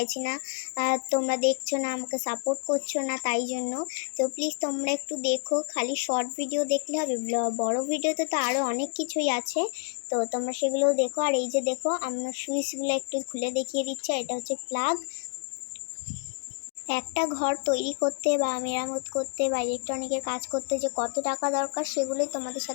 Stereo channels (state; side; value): silent; right; digital silence